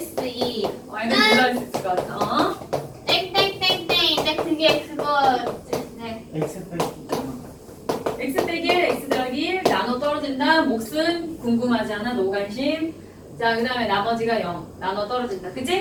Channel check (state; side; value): identical; both; correlation 1.00